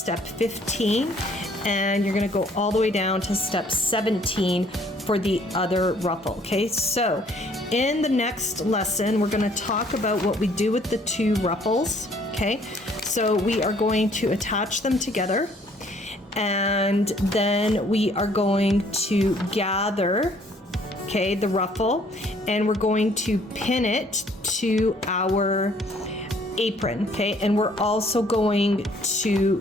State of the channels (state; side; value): normal; both; correlation 0.61